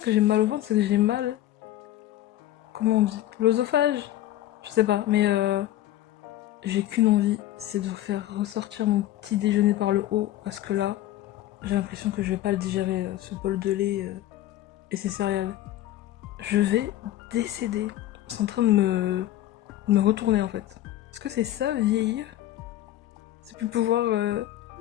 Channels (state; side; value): quieter; right; 13.7 dB